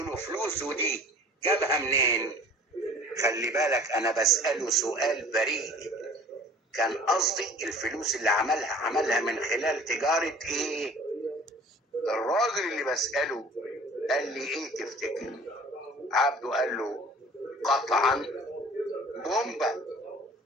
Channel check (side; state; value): both; normal; correlation 0.47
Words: فلوسه دي جابها منين؟ خلي بالك انا بسأله سؤال بريء. كان قصدي الفلوس اللي عملها من خلال تجارة ايه؟ الراجل اللي بسأله قال لي: ايه تفتكر؟ عبده قال له: قطعا بومبا.